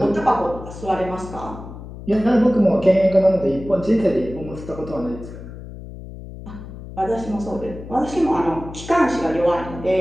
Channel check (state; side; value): noise; left; hum, 13 dB below the sound